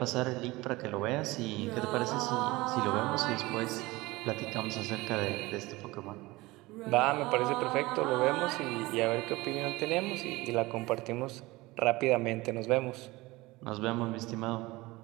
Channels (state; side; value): quieter; left; 20.9 dB